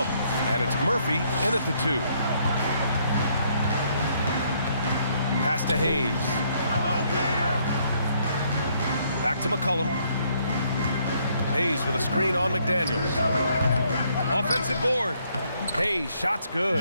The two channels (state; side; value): inverted; both; correlation -0.69